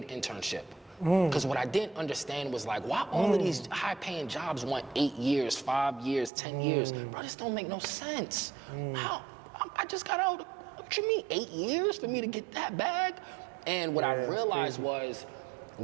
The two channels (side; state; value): left; drops out; at 6.3 s